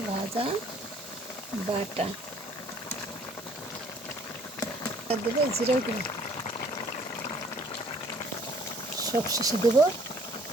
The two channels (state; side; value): normal; both; correlation 0.58